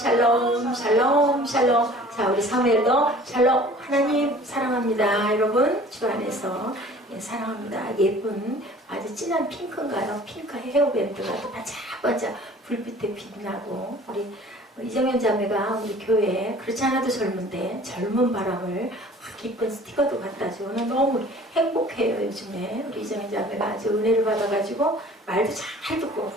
샬롬 샬롬. 자 우리 사무엘도 샬롬 하나님 사랑합니다. 여러분 주 안에서 예, 사랑합니다. 예쁜 아주 진한 핑크인가요? 핑크 헤어밴드가 또 반짝반짝 불빛에 빛나고 우리 이정현 자매가 우리 교회에 그렇지 않아도 젊은데 젊은 바람을 기쁜 스티커도 갖다 주고 너무 행복해요. 요즘에 우리 이정현 자매가 아주 은혜를 받아가지고 말도 잘 듣고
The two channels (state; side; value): normal; both; correlation 0.48